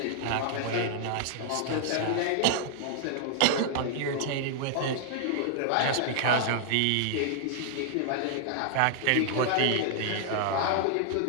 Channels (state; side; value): different; both; correlation -0.01